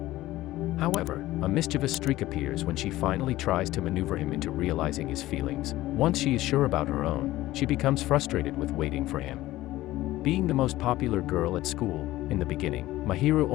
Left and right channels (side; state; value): right; quieter; 16.4 dB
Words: However, a mischievous streak appears when she finally tries to maneuver him into realizing his feelings. Once she is sure about her own, she becomes frustrated with waiting for him. Being the most popular girl at school, in the beginning, Mahiru